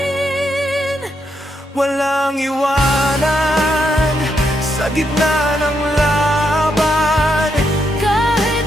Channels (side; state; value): both; normal; correlation 0.79